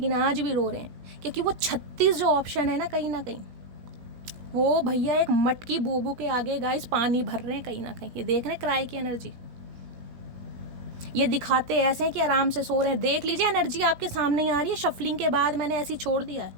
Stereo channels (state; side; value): late; left; 16 ms